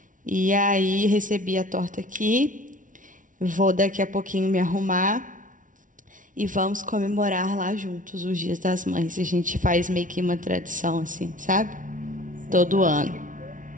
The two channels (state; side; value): late; left; 0.38 ms